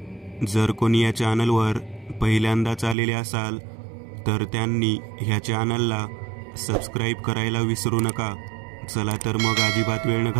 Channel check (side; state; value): left; drops out; at 3.0 s